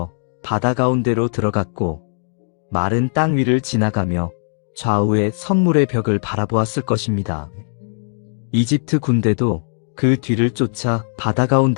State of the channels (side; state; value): right; silent; digital silence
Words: 바다 가운데로 들어갔고 마른 땅 위를 지나가며 좌우에 선물의 벽을 바라보았을 것입니다. 이집트 군대도 그 뒤를 쫓아 바다